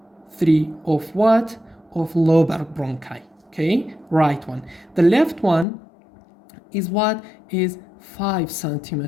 3 of what? Of lobar bronchi. Okay, right one. The left one is what? Is 5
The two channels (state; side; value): drops out; right; at 5.7 s